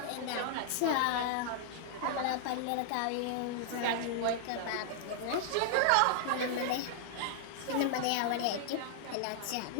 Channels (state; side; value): different; both; correlation -0.01